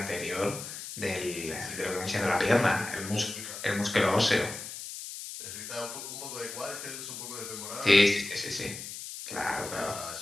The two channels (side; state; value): left; noise; hiss, 9 dB below the sound